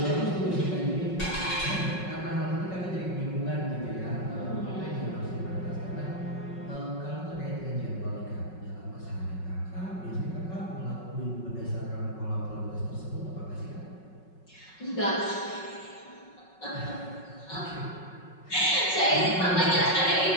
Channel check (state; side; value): late; right; 5.4 ms